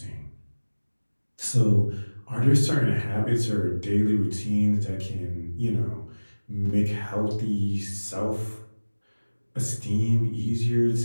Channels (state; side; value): inverted; both; correlation -1.00